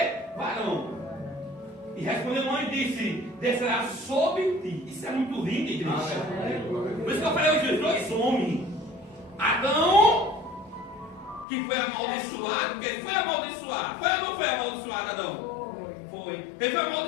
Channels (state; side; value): drops out; right; at 11.5 s